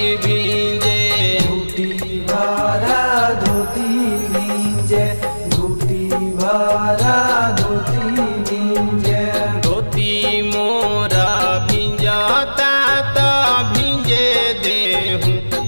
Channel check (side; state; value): both; inverted; correlation -1.00